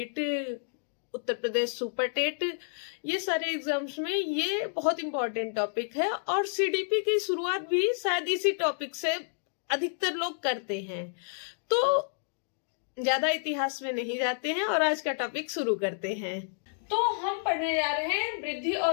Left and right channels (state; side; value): silent; right; digital silence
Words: Uttar Pradesh super TET, ये सारे एग्जाम्स में ये बहुत इंपॉर्टेंट टॉपिक है। और CDP की शुरुआत भी शायद इसी टॉपिक से अधिकतर लोग करते हैं। तो ज्यादा इतिहास में नहीं जाते हैं और आज का टॉपिक शुरू करते हैं। तो हम पढ़ने जा रहे हैं वृद्धि